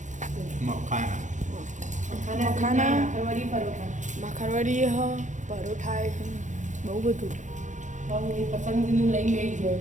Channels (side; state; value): left; late; 0.35 ms